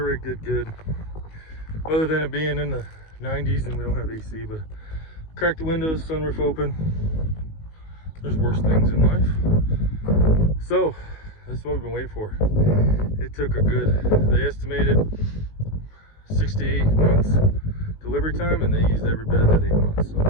did good, other than it being in the 90s and we don't have AC, but cracked the windows, sunroof open. There's worse things in life. So this is what we've been waiting for. It took a good, they estimated 6 to 8 months delivery time, and they used every bit of that 8 months.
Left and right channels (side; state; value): right; late; 19 ms